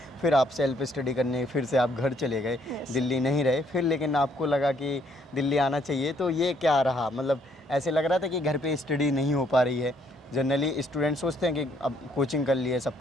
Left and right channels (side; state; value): both; normal; correlation 0.68